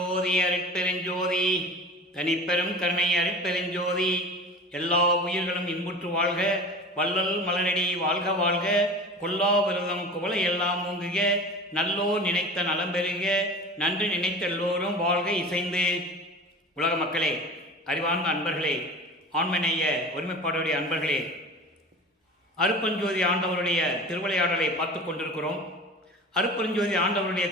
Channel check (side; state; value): both; normal; correlation 0.35